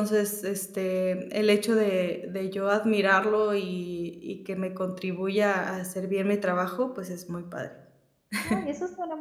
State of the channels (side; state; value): both; identical; correlation 1.00